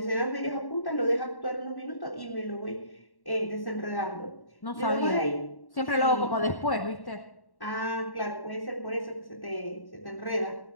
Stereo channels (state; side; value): late; right; 1.1 ms